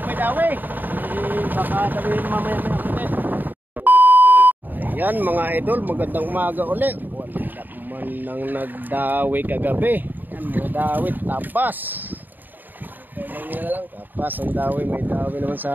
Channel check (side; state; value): left; late; 0.089 ms